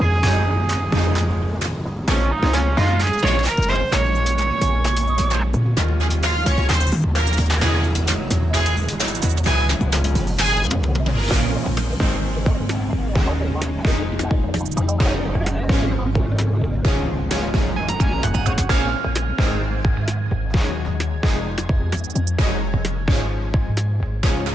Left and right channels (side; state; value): both; normal; correlation 0.87